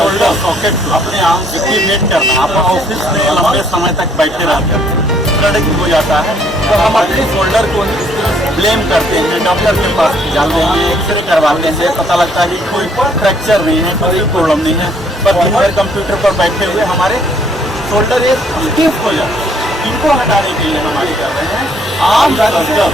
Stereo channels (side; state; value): both; normal; correlation 0.65